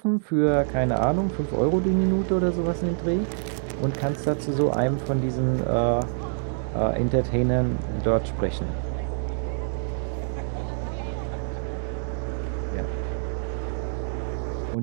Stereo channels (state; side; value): silent; left; digital silence